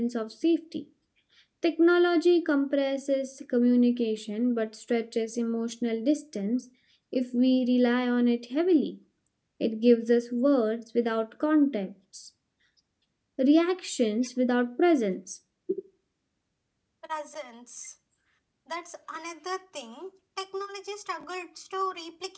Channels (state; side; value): identical; both; correlation 1.00